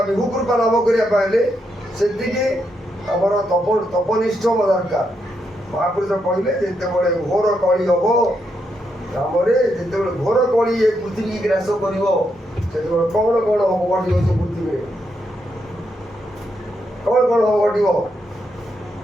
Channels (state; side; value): normal; both; correlation 0.81